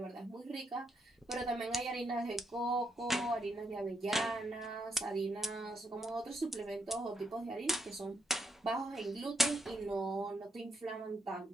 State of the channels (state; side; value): normal; both; correlation 0.77